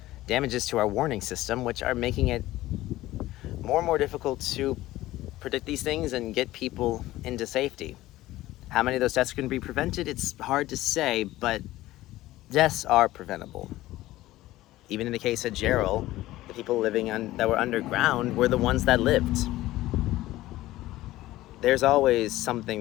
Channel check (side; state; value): right; quieter; 16.4 dB